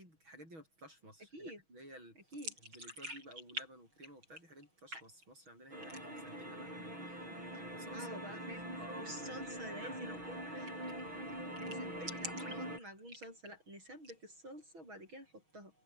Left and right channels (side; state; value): left; late; 6.2 ms